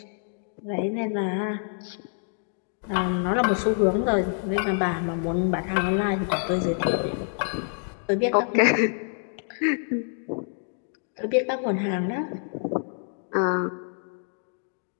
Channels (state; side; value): silent; right; 60 dB below the other